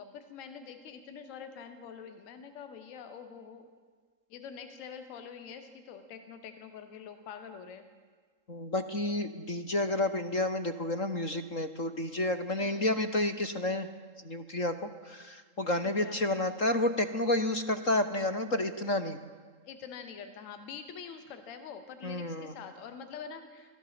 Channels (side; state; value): right; late; 3.8 ms